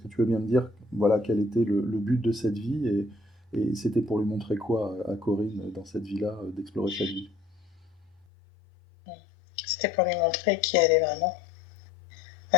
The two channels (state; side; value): drops out; right; at 8.2 s